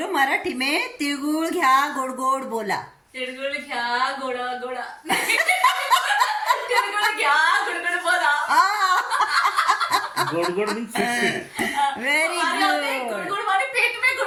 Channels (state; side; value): identical; both; correlation 1.00